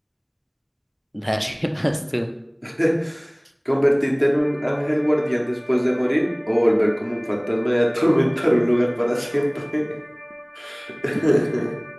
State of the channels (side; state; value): both; identical; correlation 1.00